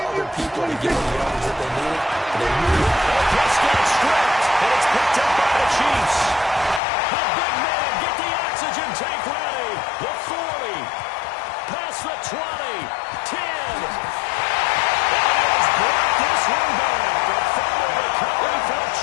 other people to get the yards that they needed. And they knew it. Prescott stripped, and it's picked up by the Chiefs. A big man, get the oxygen tank ready. The 40, past the 20, 10. Brought this one back. A fumble recovery for a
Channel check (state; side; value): drops out; right; at 6.8 s